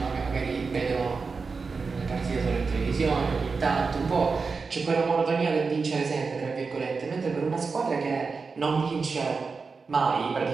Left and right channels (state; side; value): quieter; left; 4.7 dB